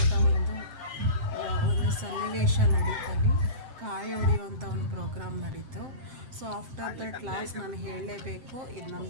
ಒಂದು ಸನ್ನಿವೇಶ ನಡೀತಲ್ಲಿ, ಕಾಯಿ ಹೊಡೆಯುವಂಥ ಒಂದು ಪ್ರೋಗ್ರಾಮ್ ನಡೀತು. ಸೊ ಆಫ್ಟರ್ ದಟ್ ಲಾಸ್ಟ್ ನಾನು ಹೇಳಲೇಬೇಕು, ಇದು ನಮ್ಮ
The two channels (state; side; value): late; left; 7.7 ms